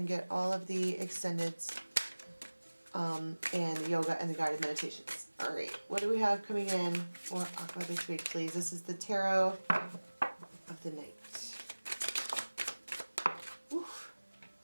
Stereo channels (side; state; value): both; inverted; correlation -1.00